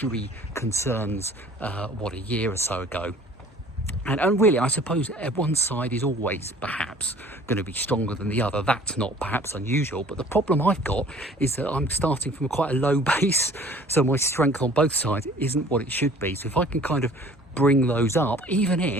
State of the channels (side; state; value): both; normal; correlation 0.51